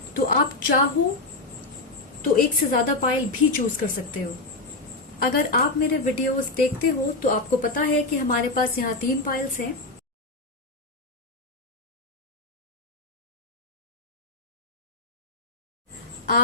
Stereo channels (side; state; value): right; quieter; 3.1 dB